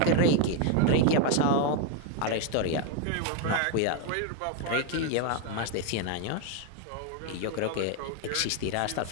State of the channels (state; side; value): different; both; correlation 0.01